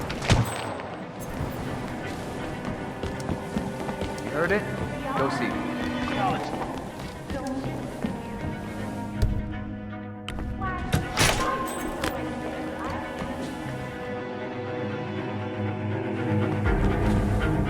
Heard it? Go see.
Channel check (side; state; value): both; identical; correlation 1.00